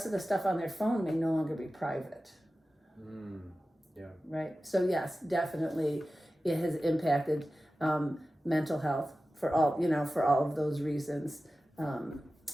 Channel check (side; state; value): both; normal; correlation 0.95